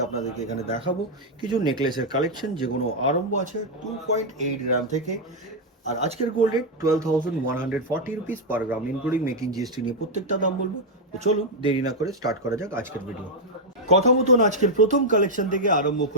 আপনাদেরকে এখানে দেখাবো কিছু নেকলেসের কালেকশন, যেগুলো আরম্ভ আছে 2.8 গ্রাম থেকে। আর আজকের গোল্ড রেট 12,140 রুপিস পার গ্রাম, ইনক্লুডিং মেকিং জিএসটি নিয়ে প্রত্যেকটা দাম বলবো। তো চলুন দেরি না করে স্টার্ট করা যাক আজকের ভিডিও। কথা মতন আজকের প্রথম কালেকশন থেকে আরম্ভ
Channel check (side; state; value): both; normal; correlation 0.00